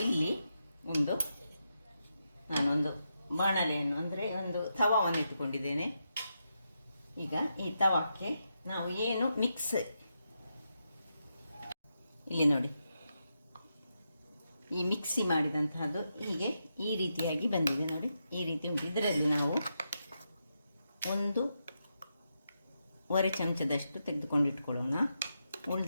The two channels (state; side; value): inverted; both; correlation -0.85